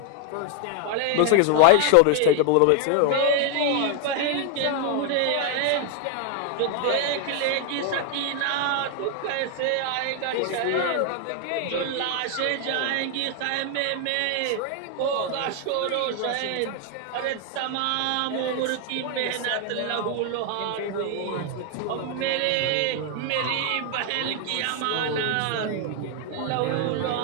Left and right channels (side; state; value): both; different; correlation 0.00